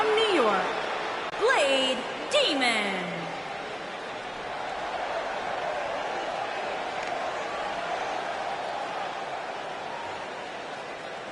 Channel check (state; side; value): identical; both; correlation 1.00